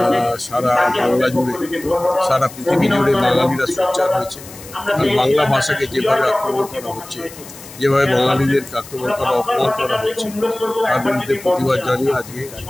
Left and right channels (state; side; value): noise; left; hiss, 17 dB below the sound